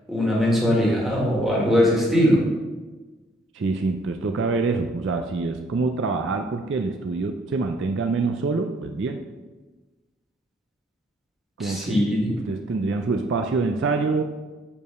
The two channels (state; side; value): normal; both; correlation 0.64